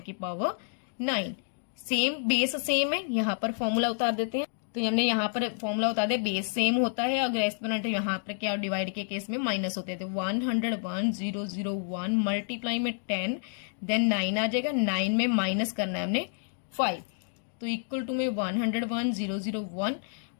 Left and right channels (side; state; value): right; silent; digital silence